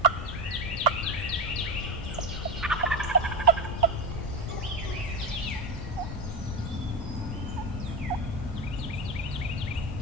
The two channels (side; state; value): both; normal; correlation 0.17